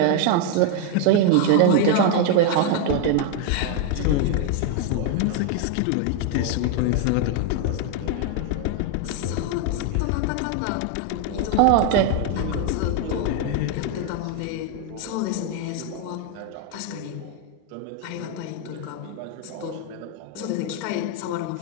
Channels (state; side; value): different; both; correlation 0.01